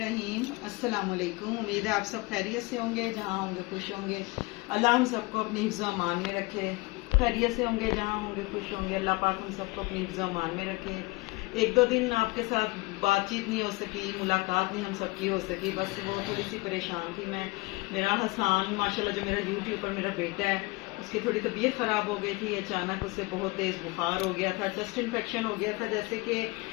अस्सलाम वालेकुम। उम्मीद है आप सब खैरियत से होंगे, जहाँ होंगे खुश होंगे। अल्लाह हम सबको अपनी हिफ्ज़ व अमान में रखे। खैरियत से होंगे, जहाँ होंगे खुश होंगे। अल्लाह पाक हम सबको अपनी हिफ्ज़ व अमान में रखे। एक दो दिन आपके साथ बातचीत नहीं हो सकी, मुलाकात नहीं हम सबकी हो सकी, बस वो थोड़ी सी परेशान थी मैं। मेरा हसान माशाल्लाह जो मेरा यूट्यूब पर मेरा बेटा है, उसकी थोड़ी तबीयत ख़राब हो गई थी। अचानक उससे बहुत तेज़ बुखार हो गया था, चेस्ट इन्फेक्शन हो गया था। जैसे कि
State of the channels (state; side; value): quieter; right; 24.6 dB